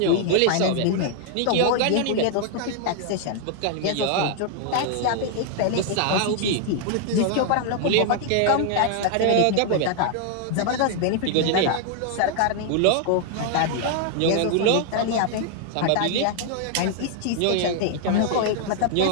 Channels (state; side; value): different; both; correlation 0.00